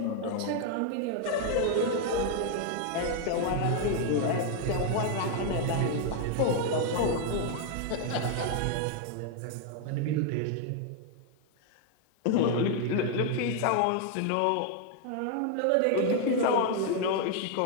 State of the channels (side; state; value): both; different; correlation 0.00